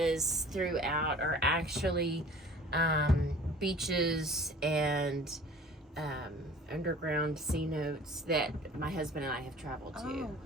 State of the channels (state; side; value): normal; both; correlation 0.47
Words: throughout are actually beaches and underground C notes that my husband and I have traveled to. Oh,